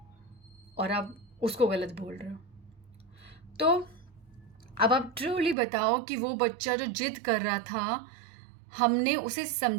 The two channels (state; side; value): drops out; left; at 5.6 s